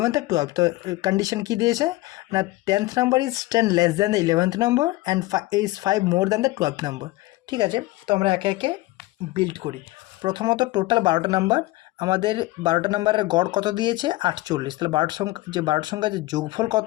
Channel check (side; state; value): right; quieter; 19.1 dB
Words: আর 12th। তো কন্ডিশন কী দিয়েছে না 10th number is 10 less than the 11th number and is 5 more than the 12th number. ঠিক আছে, তো আমরা একে একে বিল্ড করি। প্রথমত টোটাল 12টা নাম্বার, আমাদের 12টা নাম্বারের গড় কত দিয়েছে 48। তাহলে 12টা সংখ্যা যে যোগফল